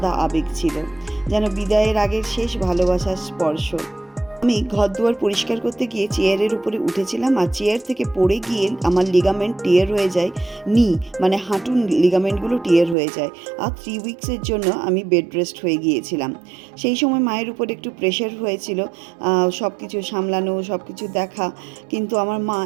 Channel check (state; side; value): drops out; left; at 13.0 s